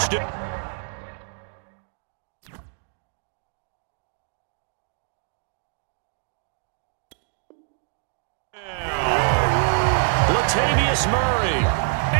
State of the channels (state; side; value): silent; left; 61 dB below the other